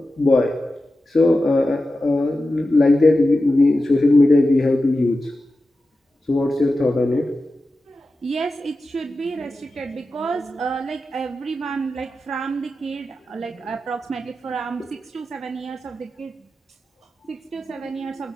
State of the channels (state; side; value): normal; both; correlation 0.92